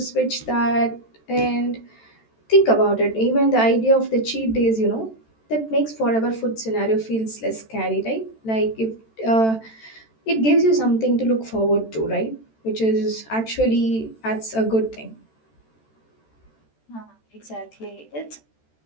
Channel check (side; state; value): right; late; 13 ms